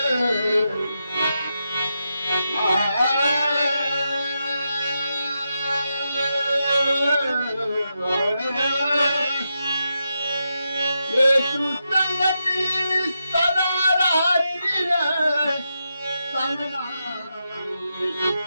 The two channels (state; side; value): inverted; both; correlation -0.86